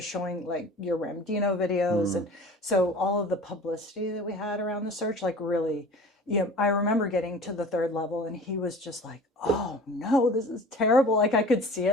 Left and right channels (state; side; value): normal; both; correlation 0.42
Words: showing your Ramdino videos. And so all of the publicity that we had around the search, really, I remember getting to the 3rd level and he was just like, oh no, this is terrible. I could see